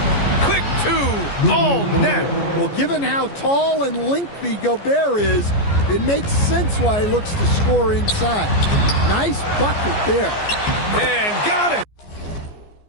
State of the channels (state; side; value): late; right; 14 ms